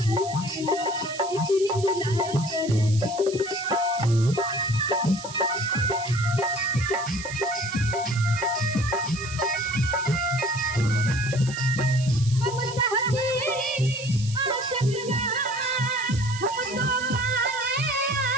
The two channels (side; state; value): right; noise; hiss, 13 dB below the sound